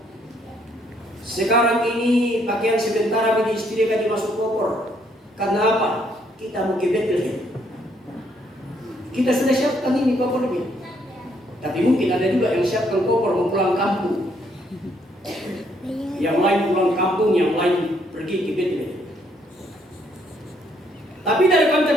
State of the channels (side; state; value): both; normal; correlation 0.70